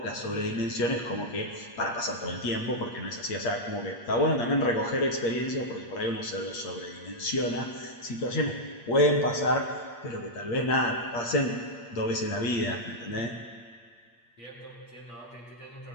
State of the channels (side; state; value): right; late; 8.5 ms